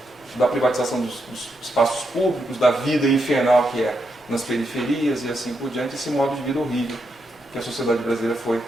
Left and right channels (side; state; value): both; normal; correlation 0.82